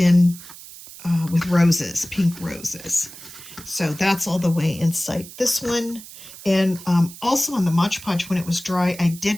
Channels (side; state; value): right; noise; hiss, 16 dB below the sound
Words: with roses, pink roses. So that's all the way inside this one. And also on the Mod Podge, when it was dry, I